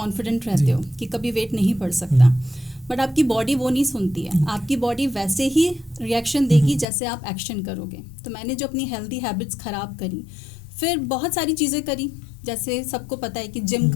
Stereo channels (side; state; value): right; drops out; at 6.9 s